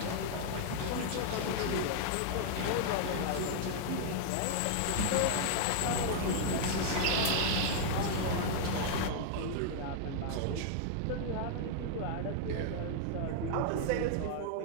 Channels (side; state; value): both; different; correlation -0.01